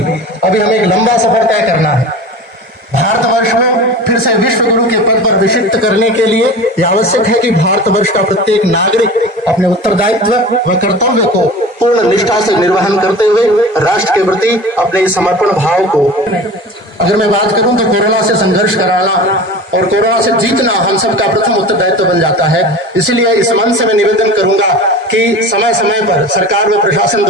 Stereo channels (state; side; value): normal; both; correlation 0.35